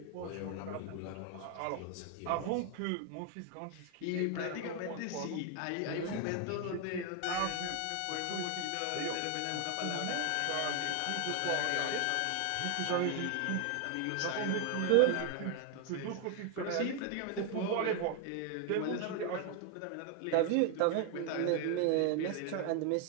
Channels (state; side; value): different; both; correlation 0.00